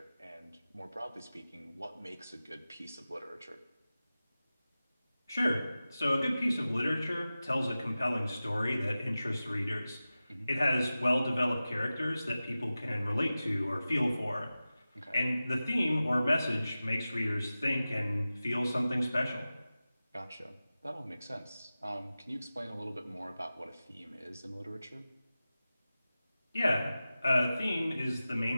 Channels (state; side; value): inverted; both; correlation -0.95